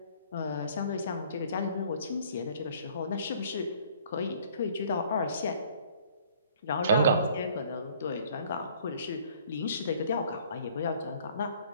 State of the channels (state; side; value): inverted; both; correlation -0.56